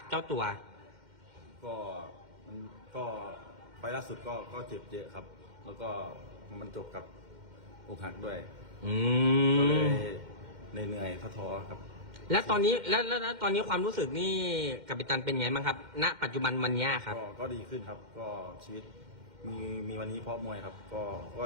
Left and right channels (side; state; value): left; late; 2.1 ms